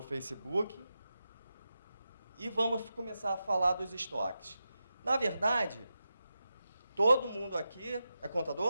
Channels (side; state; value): both; inverted; correlation -0.90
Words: Facebook. E vamos começar a falar dos estoques. Na verdade, todo mundo aqui é